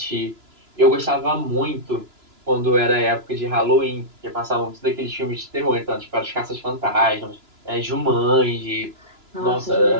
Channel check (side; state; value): left; late; 2.9 ms